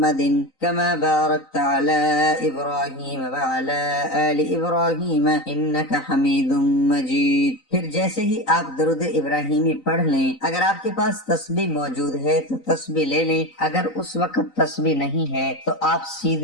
کما بارکت علی ابراہیم وعلی آل ابراہیم انک حمید مجید۔ پھر جیسے ہی آپ درود ابراہیمی پڑھ لیں، اگر آپ کے پاس تسبیح موجود ہے تو تسبیح لے لیں، اگر اس وقت تسبیح نہیں ہے تو آپ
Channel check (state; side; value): late; right; 3.9 ms